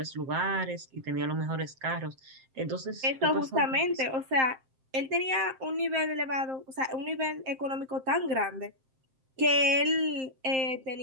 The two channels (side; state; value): left; late; 7.6 ms